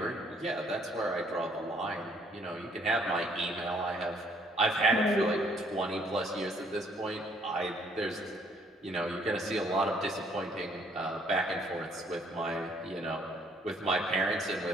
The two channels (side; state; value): both; normal; correlation 0.64